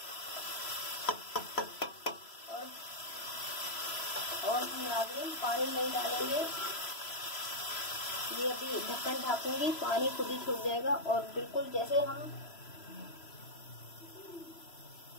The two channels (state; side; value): late; right; 3.0 ms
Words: और हम नाज़रीन पानी नहीं डालेंगे। ये अभी ढक्कन ढाकूंगी, पानी खुद ही छूट जाएगा। और बिल्कुल जैसे